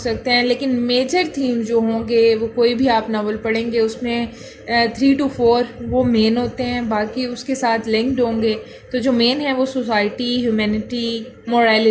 हैं, लेकिन मेजर थीम जो होंगे वो कोई भी आप नावल पढ़ेंगे उसमें 3 to 4 वो मेन होते हैं, बाकी उसके साथ लिंक्ड होंगे। तो जो मेन है वो society, humanity,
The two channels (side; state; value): both; identical; correlation 1.00